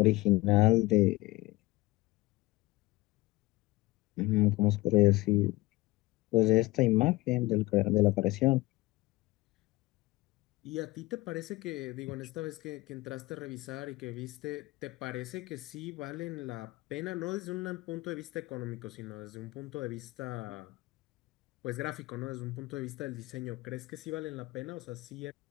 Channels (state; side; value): quieter; right; 20.2 dB